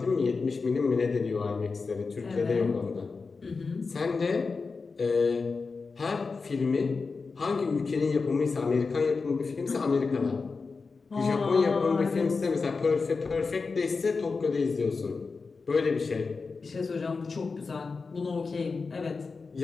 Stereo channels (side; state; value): right; quieter; 4.5 dB